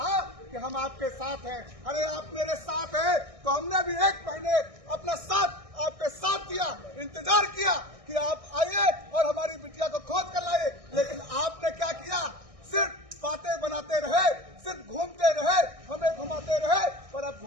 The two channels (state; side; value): late; left; 1.6 ms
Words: कि हम आपके साथ हैं। अरे आप मेरे साथ हैं तो हमने भी 1 महीने अपना साथ आपके साथ दिया, इंतजार किया कि आप आइए और हमारी बिटिया को खोज कर लाइए, लेकिन आपने क्या किया? सिर्फ बातें बनाते रहे, सिर्फ घूमते रहे, हमें घुमाते रहे। पर अब